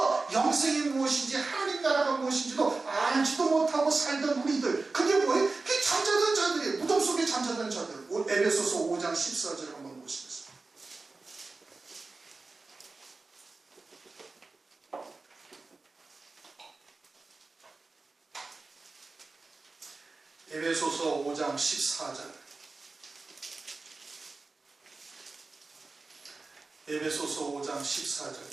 영생이 무엇인지 하나님 나라가 무엇인지도 알지도 못하고 살던 우리들, 그게 뭐예요? 그게 잠자던 자들이에요. 무덤 속에 잠자던 자들. 에베소서 5장 14절을 한번 보시겠습니다. 에베소서 5장 14절. 에베소서 5장 14절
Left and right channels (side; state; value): left; quieter; 3.7 dB